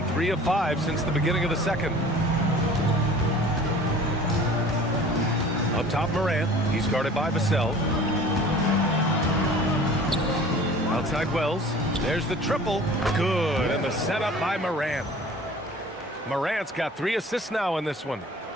3 of 5 since the beginning of the second. Up top, Morant. He's guarded by Vassell. Outside Wells. There's the triple. Good. And the setup by Morant. Morant's got 3 assists now in this one.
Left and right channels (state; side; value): normal; both; correlation 0.45